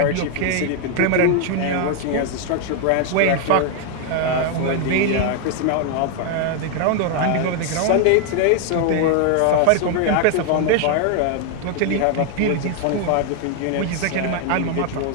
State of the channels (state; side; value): different; both; correlation 0.00